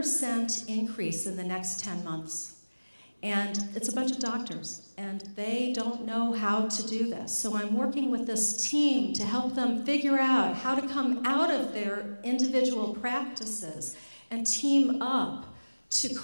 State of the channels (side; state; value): both; inverted; correlation -1.00